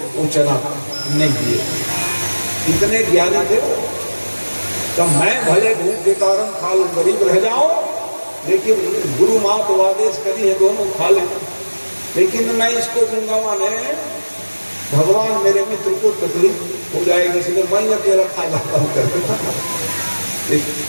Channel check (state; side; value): inverted; both; correlation -1.00